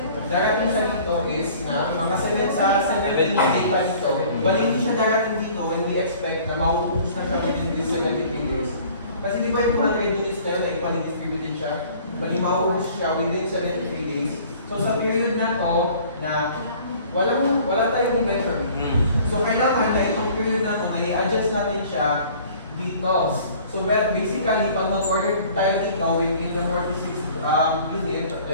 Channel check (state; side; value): inverted; both; correlation -0.50